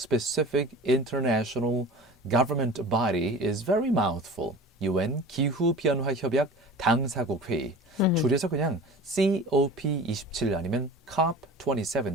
international government body is very mouthful. UN 기후변화 협약 당사국 회의. 줄여서 그냥 COP27 아니면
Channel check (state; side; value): normal; both; correlation 0.38